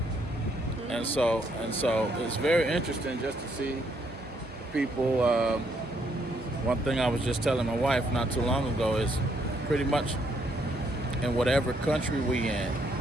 And so it's very interesting just to see people. One thing I was just telling my wife not too long ago is pretty much in whatever country we in,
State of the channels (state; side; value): normal; both; correlation 0.72